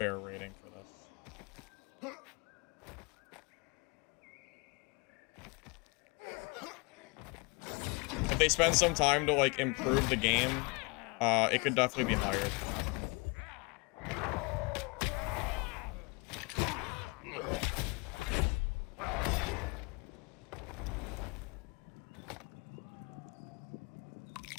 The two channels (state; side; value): quieter; right; 30.0 dB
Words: rating for this. If they spend some time to, like, improve the game, it could definitely be higher than that.